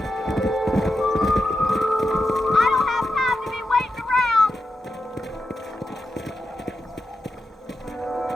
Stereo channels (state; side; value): normal; both; correlation 0.88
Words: I don't have time to be waiting around.